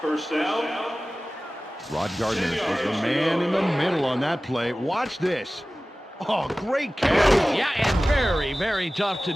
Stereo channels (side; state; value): both; normal; correlation 0.97